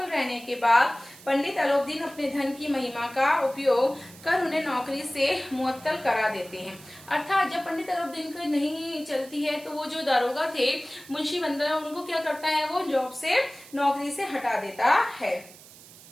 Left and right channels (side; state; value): right; noise; hiss, 20 dB below the sound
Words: रहने के बाद पंडित आलोकदीन अपने धन की महिमा का उपयोग कर उन्हें नौकरी से मुअत्तल करा देते हैं। अर्थात जब पंडित आलोकदीन की नहीं चलती है तो वो जो दारोगा थे मुंशी वंशीधर, उनको क्या करता है, वो जॉब से, नौकरी से हटा देता है।